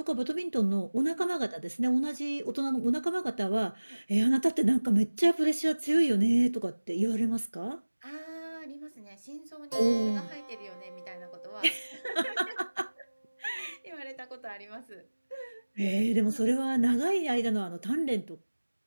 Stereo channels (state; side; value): inverted; both; correlation -1.00